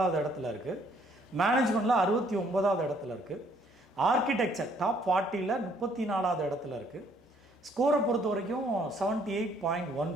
இடத்துல இருக்குது, மேனேஜ்மெண்ட்டில் 69வது இடத்துல இருக்குது, ஆர்கிடெக்சர் டாப் 40ல் 34வது இடத்துல இருக்குது. ஸ்கோரை பொறுத்த வரைக்கும்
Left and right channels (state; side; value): normal; both; correlation 0.64